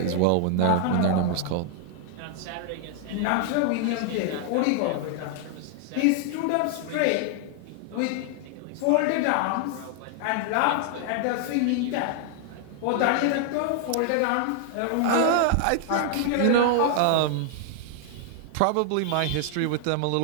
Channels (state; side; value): different; both; correlation 0.00